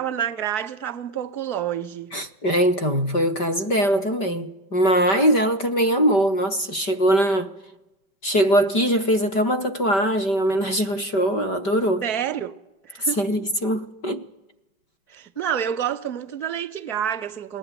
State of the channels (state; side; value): late; right; 5.1 ms